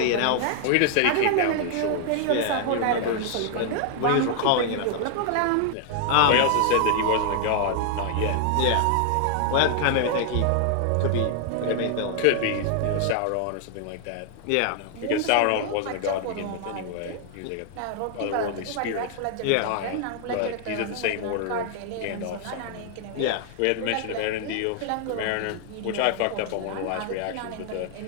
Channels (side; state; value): both; different; correlation 0.00